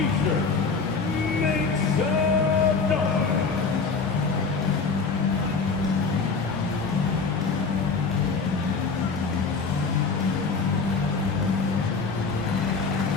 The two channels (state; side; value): quieter; right; 4.7 dB